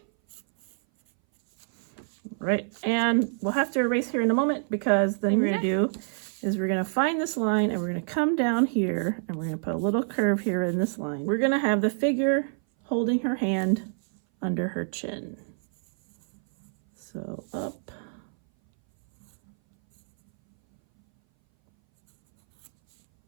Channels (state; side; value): silent; left; 59 dB below the other